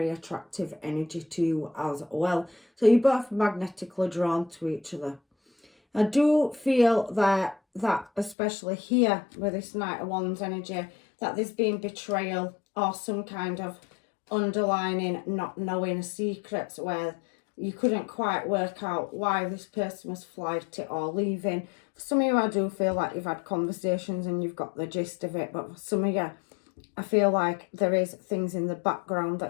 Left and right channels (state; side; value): drops out; right; at 8.3 s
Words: attractive energy to you as well. So you're both magnetically drawn to each other. I do feel that especially here with this Knight of Wands energy, that there's been betrayal or some kind of underlining not knowing secrets where you couldn't quite work out why this person was flighty or leaving. For some of you, I do feel like you've had conversations and you've got the gist of it. But for some of you, I feel like there is things in the background